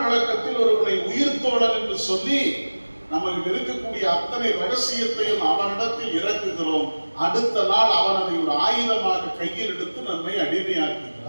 பழக்கத்தில் ஒருவனை உயிர் தோழன் என்று சொல்லி நமக்கு இருக்கக்கூடிய அத்தனை ரகசியத்தையும் அவனிடத்தில் இறக்குகிறோம். அடுத்த நாள் அவன் அதை ஒரு ஆயுதமாக கையில் எடுத்து நம்மை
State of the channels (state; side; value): inverted; both; correlation -1.00